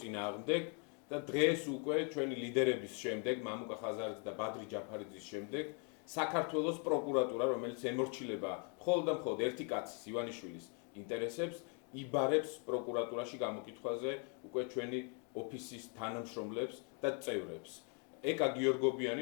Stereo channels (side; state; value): right; quieter; 38.2 dB